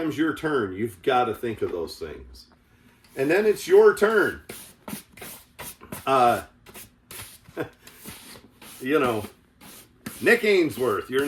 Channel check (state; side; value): identical; both; correlation 1.00